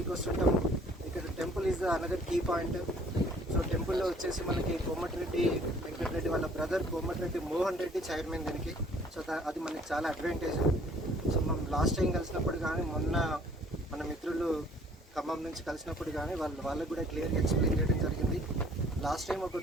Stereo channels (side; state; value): both; normal; correlation 0.57